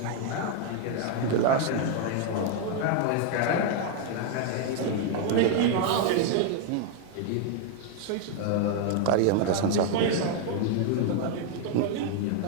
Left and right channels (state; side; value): different; both; correlation 0.00